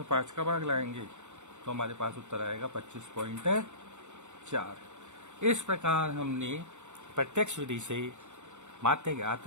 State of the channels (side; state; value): left; late; 0.84 ms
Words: 5 का भाग लगाएंगे तो हमारे पास उत्तर आएगा 25.4। इस प्रकार हमने प्रत्यक्ष विधि से माध्य ज्ञात